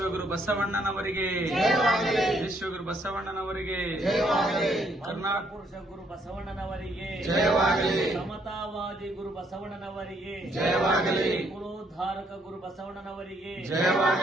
ಬಸವಣ್ಣನವರಿಗೆ ವಿಶ್ವಗುರು ಬಸವಣ್ಣನವರಿಗೆ ಕರ್ನಾಟಕ ಪುರುಷ ಗುರು ಬಸವಣ್ಣನವರಿಗೆ ಸಮತಾವಾದಿ ಗುರು ಬಸವಣ್ಣನವರಿಗೆ ಕುಲೋದ್ಧಾರಕ ಗುರು ಬಸವಣ್ಣನವರಿಗೆ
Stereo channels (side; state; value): both; normal; correlation 0.70